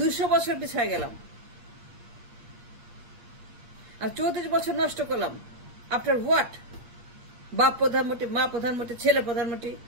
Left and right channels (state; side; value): late; left; 8.5 ms